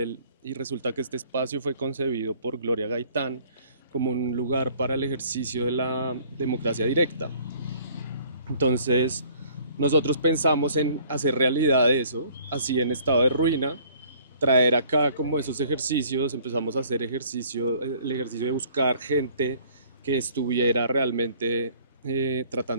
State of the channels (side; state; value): both; inverted; correlation -0.56